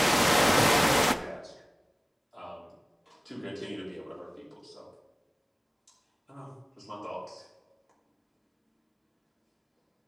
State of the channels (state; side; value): identical; both; correlation 1.00